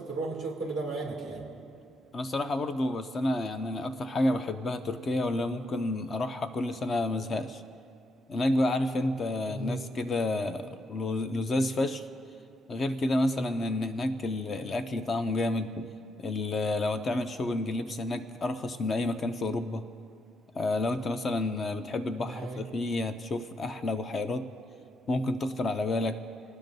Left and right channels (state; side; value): normal; both; correlation 0.79